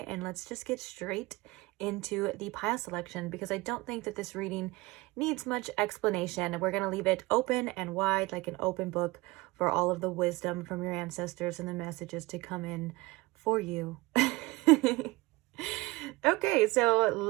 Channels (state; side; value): quieter; left; 21.9 dB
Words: and let's just get straight into the pile selection, because I don't think that this reading needs much explanation. We're going to leave it open and wide, like an open book, for all of the wisdom from your ancestors and the messages to come in for you. Okay, so